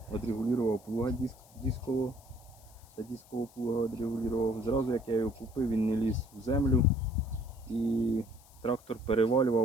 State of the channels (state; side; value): noise; left; hiss, 26 dB below the sound